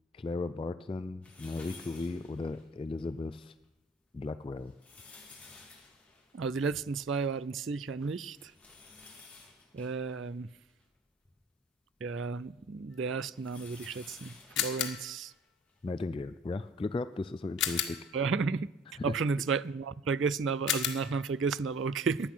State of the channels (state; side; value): normal; both; correlation 0.49